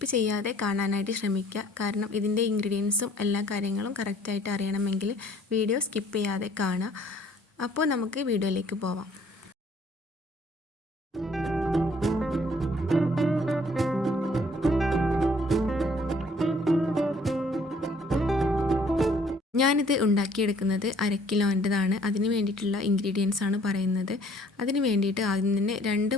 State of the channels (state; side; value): normal; both; correlation 0.59